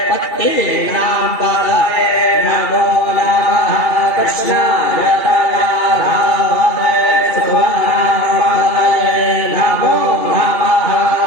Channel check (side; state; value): right; late; 2.3 ms